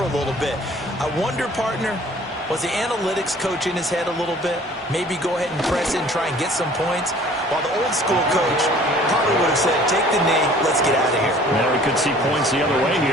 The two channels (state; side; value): normal; both; correlation 0.52